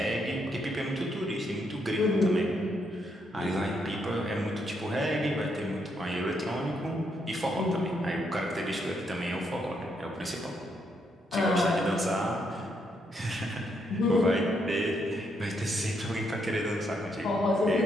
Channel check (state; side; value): normal; both; correlation 0.77